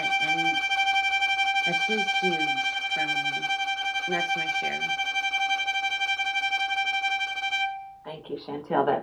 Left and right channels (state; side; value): identical; both; correlation 1.00